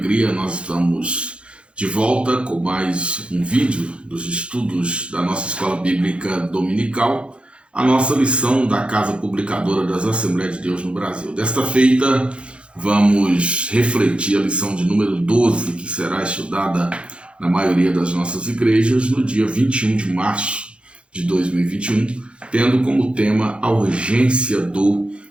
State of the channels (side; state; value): left; late; 0.058 ms